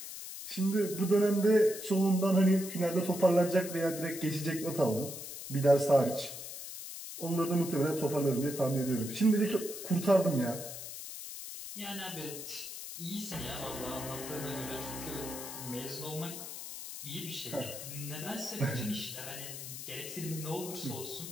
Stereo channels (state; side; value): noise; left; hiss, 9 dB below the sound